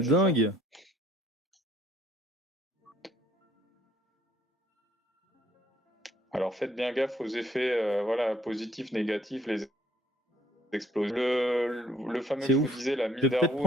c'est dingue. ça. Alors faites bien gaffe aux effets positifs, négatifs, les explosions. Le fameux C'est que je vous ouf. disais, la Je vais peut-être Mindarou,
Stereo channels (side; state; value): both; normal; correlation 0.63